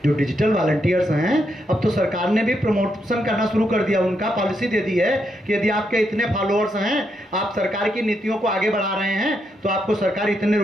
जो डिजिटल वॉलंटियर्स हैं, अब तो सरकार ने भी प्रमोशन करना शुरू कर दिया। उनका पॉलिसी दे दी है कि यदि आपके इतने फॉलोअर्स हैं, आप सरकार की नीतियों को आगे बढ़ा रहे हैं, तो आपको सरकार इतने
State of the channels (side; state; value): both; normal; correlation 0.80